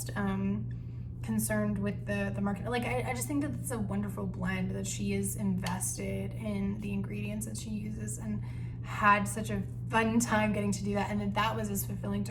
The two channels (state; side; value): identical; both; correlation 1.00